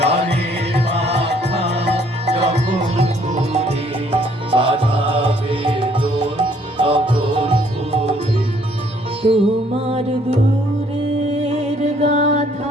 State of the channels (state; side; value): normal; both; correlation 0.63